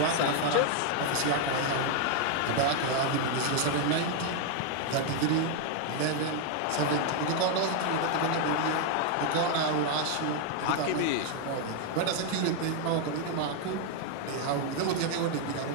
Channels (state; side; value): different; both; correlation 0.00